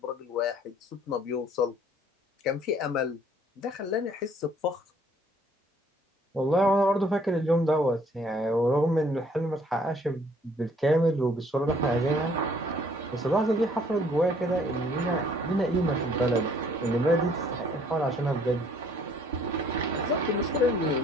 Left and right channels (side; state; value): both; normal; correlation 0.60